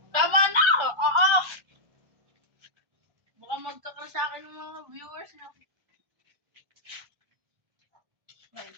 Tama na! Oo! Baka magkakal sa akin ng mga viewers na.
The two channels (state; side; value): late; left; 1.3 ms